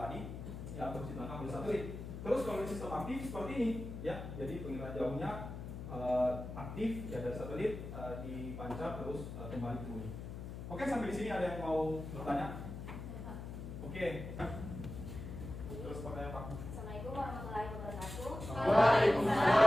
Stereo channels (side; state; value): left; noise; hum, 8 dB below the sound